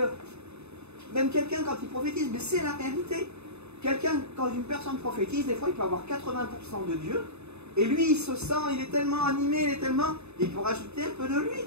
même quelqu'un quand il prophétise, mais c'est la réalité. Quelqu'un, quand une personne prophétise, des fois il peut avoir 80% de Dieu, et lui il se sent, il est tellement animé, il peut rajouter un peu de lui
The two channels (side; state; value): left; late; 0.81 ms